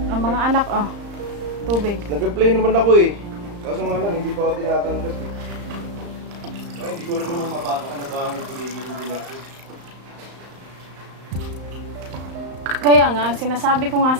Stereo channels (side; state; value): left; late; 35 ms